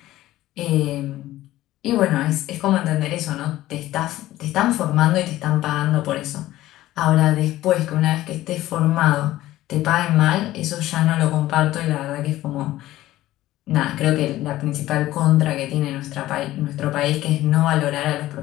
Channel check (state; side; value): quieter; right; 15.5 dB